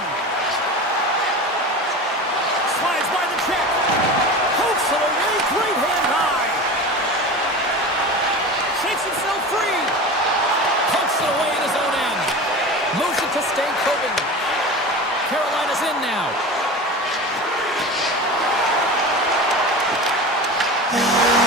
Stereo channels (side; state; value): both; normal; correlation 0.31